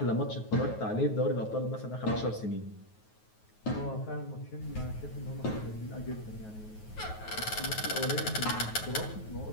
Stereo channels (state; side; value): late; right; 9.4 ms